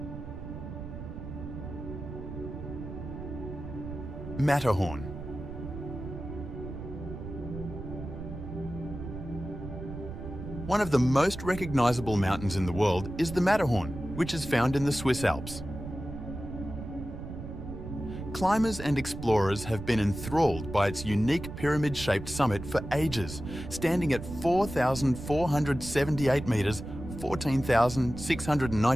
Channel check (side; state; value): right; noise; rumble, 9 dB below the sound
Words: Matterhorn. One of the most recognizable mountains in the world is the Matterhorn, which is found in the Swiss Alps. Climbers and explorers have been enthralled by its unique pyramid-shaped summit for ages, standing at 4,478 meters,